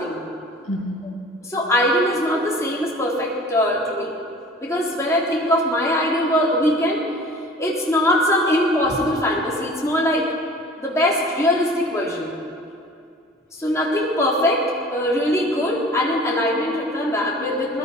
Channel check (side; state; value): both; normal; correlation 0.45